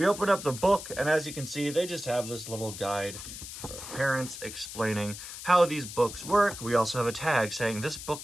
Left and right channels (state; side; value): noise; left; hiss, 10 dB below the sound